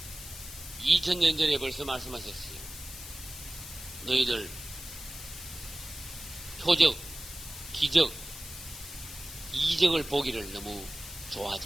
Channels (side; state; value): left; noise; hiss, 12 dB below the sound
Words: 2000년 전에 벌써 말씀하셨어요. 너희들 표적, 기적, 이적을 보기를 너무